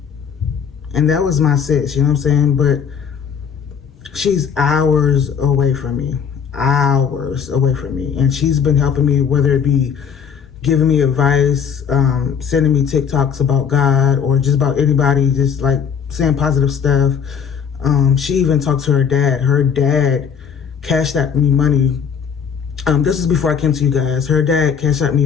And that was my sis, you know what I'm saying? But she's hours away from me. Hours away from me. And she's been helping me, whether it be giving me advice, sending me TikToks about God or just about anybody, just like saying positive stuff. She even talked to her dad. Her dad cashed out me money. This is before I came to you guys. Her dad cashed out me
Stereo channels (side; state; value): right; quieter; 7.0 dB